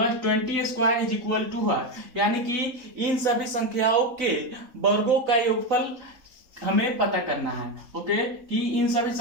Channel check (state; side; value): late; left; 4.0 ms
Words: 20 square is equal to what. यानी कि इन सभी संख्याओं के वर्गों का योगफल हमें पता करना है। ओके, कि इन सभी